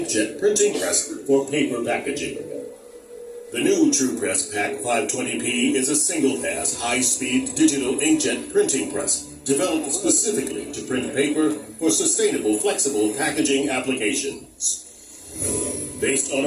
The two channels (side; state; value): both; identical; correlation 1.00